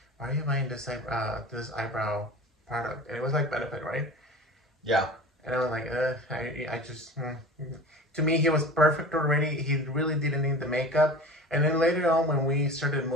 "Why are you buying this eyebrow product?" And it was like Benefit, right? Yeah. And I was like, I just, to me, he was perfect already. He really didn't need the makeup. And then later on, when we started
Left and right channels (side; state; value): both; normal; correlation 0.36